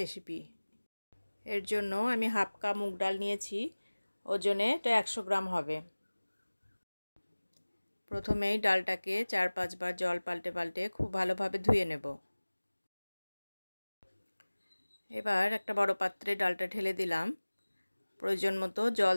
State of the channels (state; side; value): inverted; both; correlation -1.00